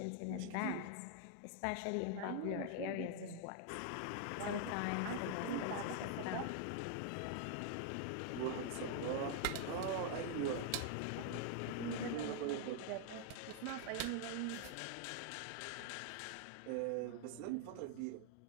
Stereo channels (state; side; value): different; both; correlation 0.00